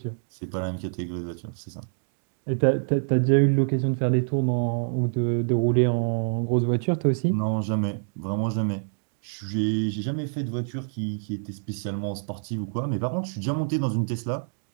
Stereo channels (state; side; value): silent; left; digital silence